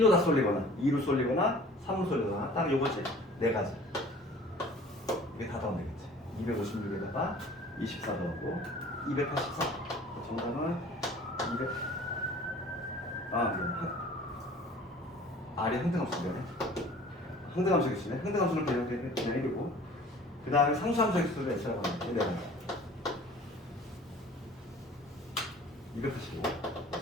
다 쏠리거나 2로 쏠리거나 3로 쏠리거나 딱 요거지. 4가지. 이게 다 더하면 되겠지. 256에다가 24 더하고 284. 정답은 200. 미안. R이 항등함수네. 항등함수 개수네. 항등함수는 그냥 1이고 그 다음에 상수함수 개수를 X라고 하는데 285.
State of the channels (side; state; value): both; normal; correlation 0.48